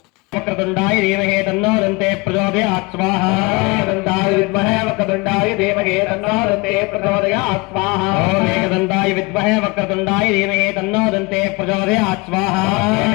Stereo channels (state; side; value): quieter; right; 25.8 dB